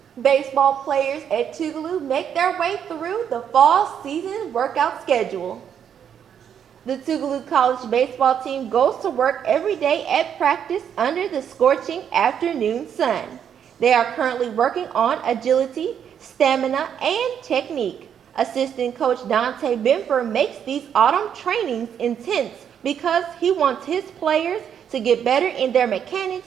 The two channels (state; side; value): quieter; left; 8.5 dB